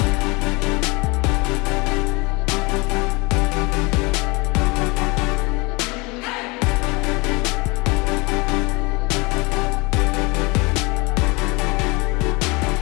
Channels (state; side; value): quieter; right; 26.3 dB